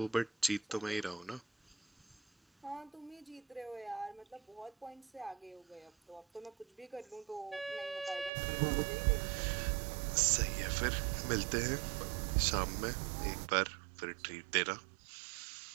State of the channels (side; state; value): left; drops out; at 8.3 s